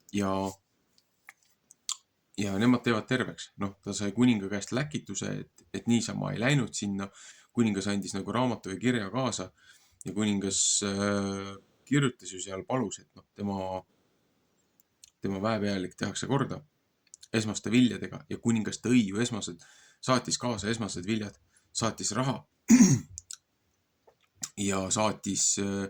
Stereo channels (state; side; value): identical; both; correlation 1.00